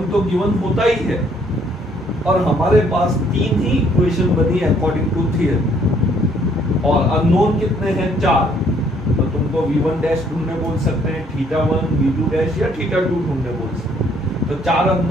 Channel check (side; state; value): both; normal; correlation 0.65